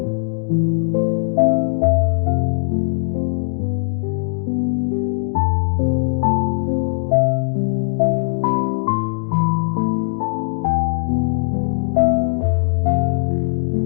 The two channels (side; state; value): right; silent; digital silence